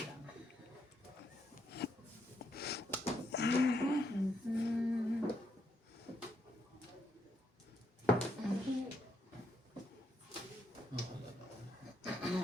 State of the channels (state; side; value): normal; both; correlation 0.77